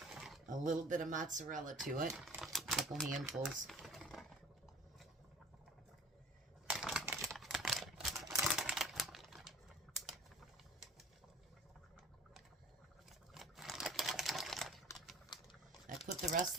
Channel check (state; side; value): normal; both; correlation 0.45